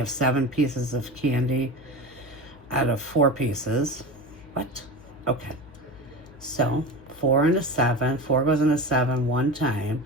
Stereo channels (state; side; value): noise; left; hum, 23 dB below the sound